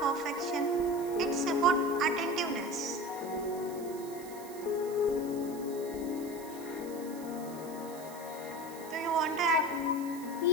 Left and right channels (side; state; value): right; noise; hiss, 17 dB below the sound